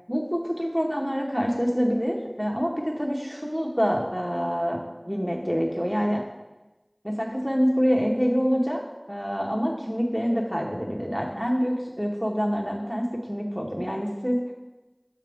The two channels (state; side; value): identical; both; correlation 1.00